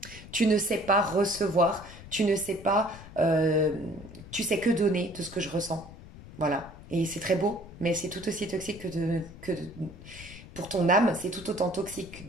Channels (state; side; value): noise; left; rumble, 17 dB below the sound